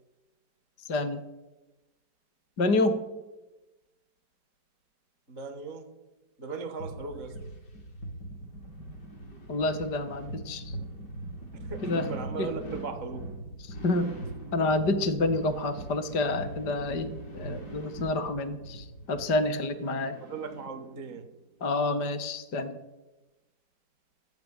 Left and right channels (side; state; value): right; late; 5.0 ms